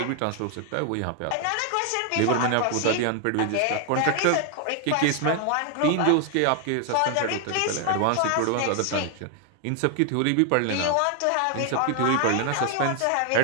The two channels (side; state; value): both; different; correlation 0.00